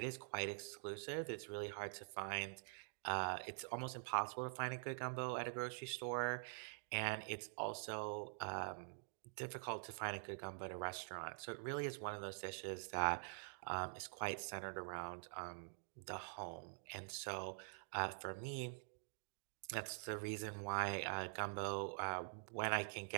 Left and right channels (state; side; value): silent; left; digital silence